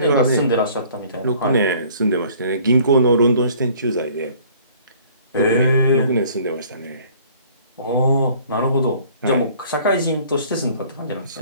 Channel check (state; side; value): inverted; both; correlation -0.54